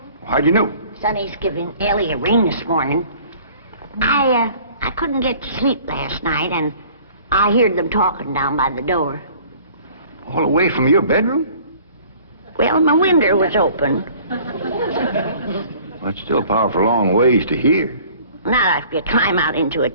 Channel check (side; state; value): both; inverted; correlation -0.51